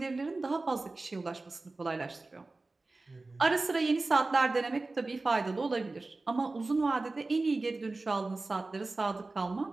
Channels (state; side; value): quieter; left; 3.3 dB